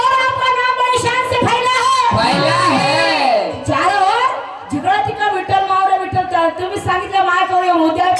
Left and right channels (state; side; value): identical; both; correlation 1.00